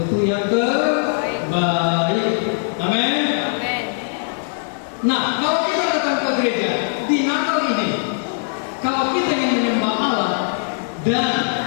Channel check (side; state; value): right; silent; digital silence